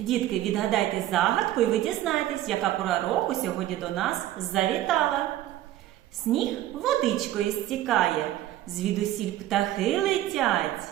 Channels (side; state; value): left; quieter; 13.7 dB